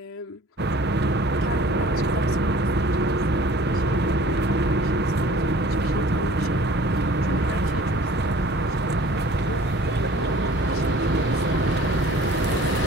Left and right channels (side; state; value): both; normal; correlation 0.49